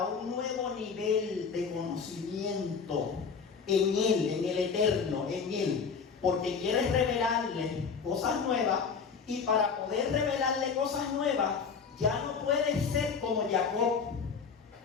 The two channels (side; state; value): right; quieter; 5.8 dB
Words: un nuevo nivel de conocimiento en Él, en el Eterno, en Él, porque quiere revelarle cosas nuevas. Y para poder revelarle cosas nuevas, ya no puede ser como Jacob,